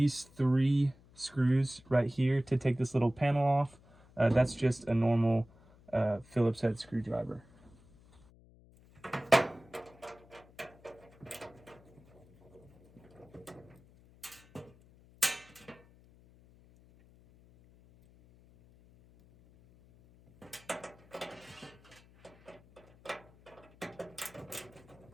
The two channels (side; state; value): left; noise; hum, 26 dB below the sound